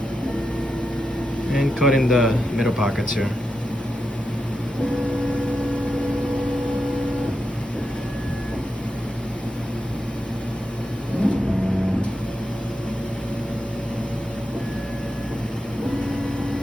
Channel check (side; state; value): both; normal; correlation 0.87